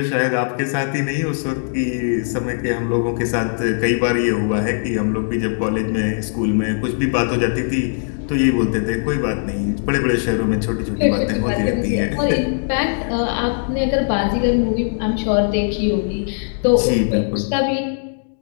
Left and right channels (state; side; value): silent; right; digital silence